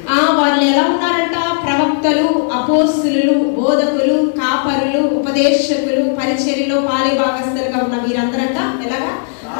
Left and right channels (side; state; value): right; silent; digital silence